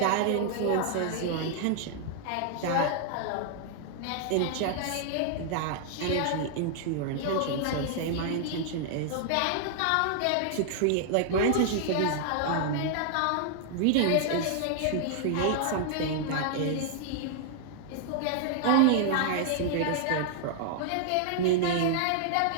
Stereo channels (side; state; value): both; different; correlation -0.01